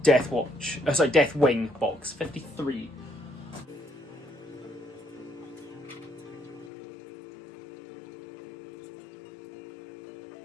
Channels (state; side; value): drops out; right; at 6.7 s